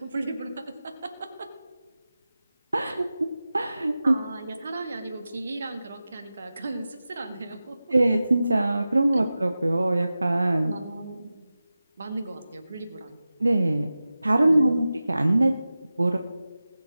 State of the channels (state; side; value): inverted; both; correlation -0.95